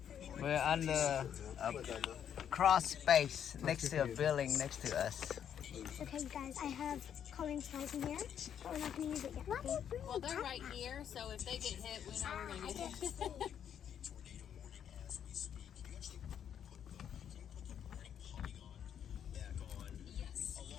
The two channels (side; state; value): right; quieter; 8.9 dB